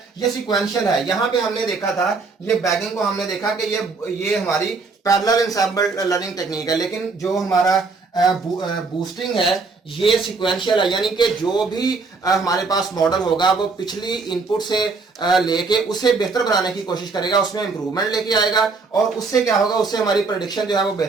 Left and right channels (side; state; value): left; quieter; 4.2 dB